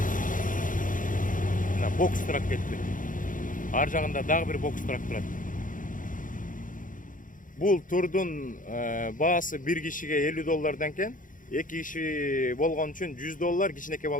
Мына бокс турак кетти. Ар жагында дагы бир бокс турак турат. Бул турдун баасы бир кишиге $50 экен. 2 киши болгон үчүн $100, кичинекей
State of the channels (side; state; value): right; late; 0.39 ms